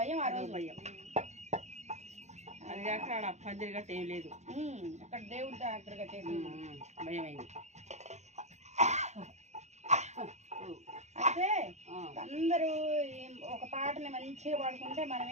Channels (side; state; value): left; late; 0.33 ms